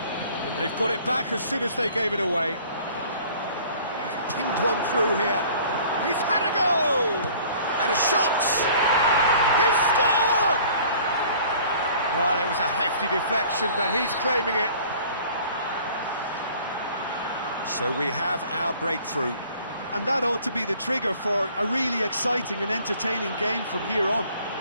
And they've got it back as soon as they gave it away. He's pinged one through here. He's had a go! And a shot! He's scored! Well, it was a hefty deflection, but he's claiming it. So we have our breakthrough. And that ought to be the trigger for a really exciting and entertaining game from here on.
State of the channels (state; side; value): inverted; both; correlation -0.51